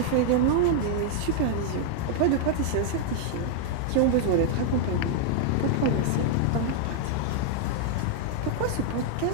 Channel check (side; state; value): both; different; correlation 0.00